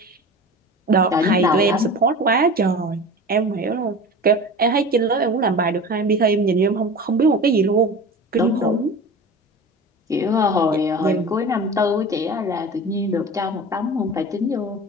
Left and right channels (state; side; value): normal; both; correlation 0.34